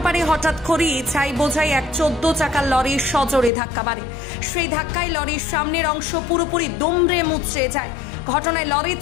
হঠাৎ করেই ছাই বোঝাই এক 14 চাকার লরির সজোরে ধাক্কা মারে। সেই ধাক্কায় লরির সামনের অংশ পুরোপুরি দুমড়ে মুচড়ে যায়। ঘটনায় লরির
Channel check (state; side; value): drops out; right; at 3.5 s